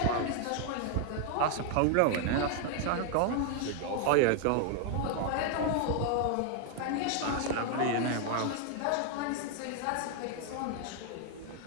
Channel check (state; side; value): different; both; correlation 0.00